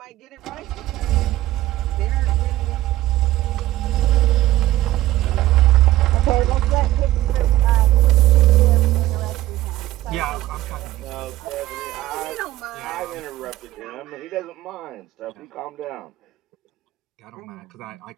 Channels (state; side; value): quieter; left; 15.5 dB